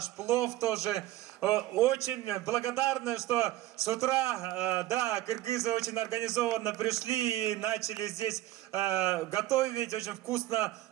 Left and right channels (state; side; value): quieter; left; 15.5 dB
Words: плов тоже. Очень благодарны, что с утра, да, кыргызы очень организованно пришли и начали здесь готовить. Очень вкусно